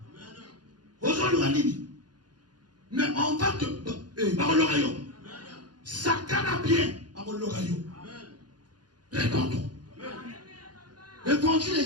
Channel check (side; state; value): left; late; 0.70 ms